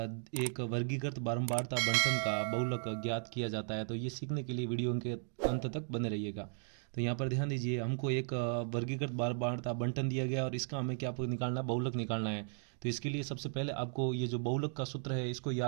एक वर्गीकृत बारंबारता बंटन का बहुलक ज्ञात किया जाता है। तो ये सीखने के लिए वीडियो के अंत तक बने रहिएगा। तो यहाँ पर ध्यान दीजिए, हमको एक वर्गीकृत बारंबारता बंटन दिया गया और इसका हमें क्या निकालना, बहुलक निकालना है। तो इसके लिए सबसे पहले आपको ये जो बहुलक का सूत्र है इसको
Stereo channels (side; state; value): left; silent; 54 dB below the other